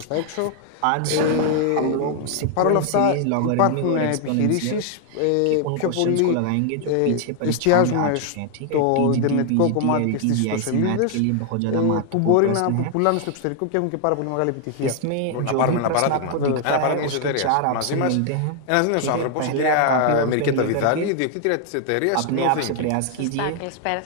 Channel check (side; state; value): both; different; correlation 0.00